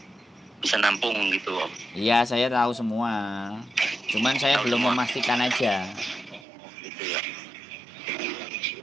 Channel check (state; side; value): drops out; left; at 6.5 s